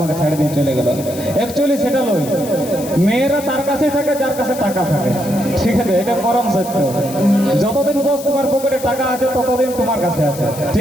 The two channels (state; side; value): noise; left; hiss, 14 dB below the sound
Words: ছাড়ে দিয়ে চলে গেল। অ্যাকচুয়ালি সেটা নয়, মেয়েরা তার কাছেই থাকে যার কাছে টাকা থাকে, ঠিক আছে? এটা পরম সত্য। যতদিন বস তোমার পকেটে টাকা আছে ততদিন তোমার কাছে আছে,